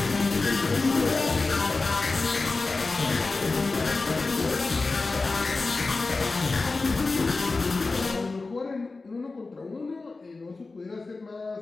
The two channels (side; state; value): right; quieter; 3.7 dB